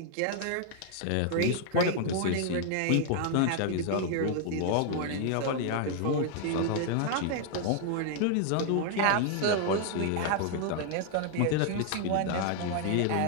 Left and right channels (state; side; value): different; both; correlation 0.00